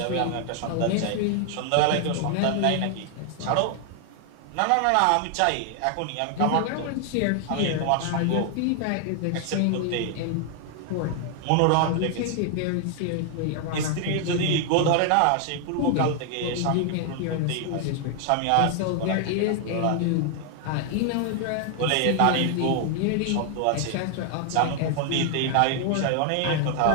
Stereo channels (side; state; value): both; different; correlation 0.00